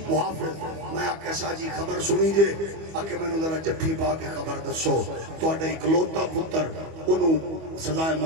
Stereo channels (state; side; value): late; left; 25 ms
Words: محافظ۔ میں آکھیا شاہ جی خبر سنی جے؟ آکھے میں ذرا جفی پا کے خبر دسو، تہاڈا اکلوتا پتر انہوں سزائے